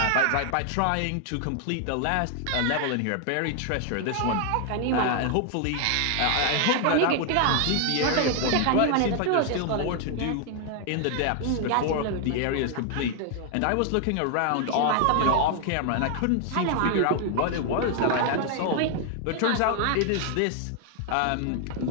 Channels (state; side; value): different; both; correlation 0.00